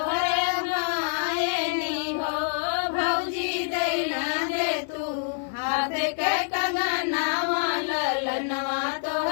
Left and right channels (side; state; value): right; silent; 55 dB below the other